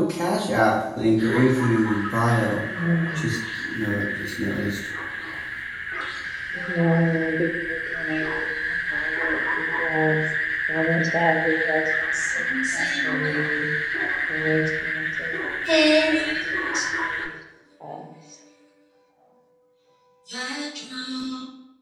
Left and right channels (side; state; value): both; identical; correlation 1.00